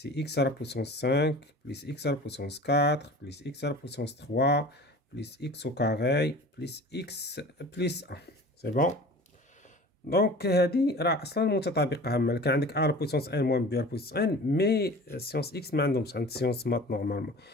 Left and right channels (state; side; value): normal; both; correlation 0.40